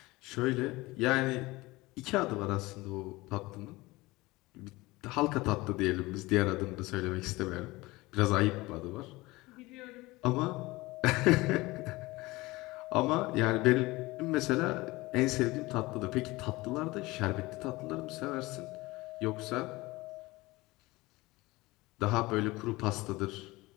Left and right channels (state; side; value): quieter; right; 21.1 dB